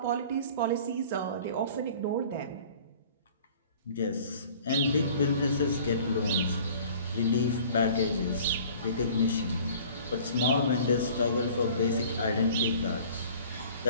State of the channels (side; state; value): both; inverted; correlation -0.48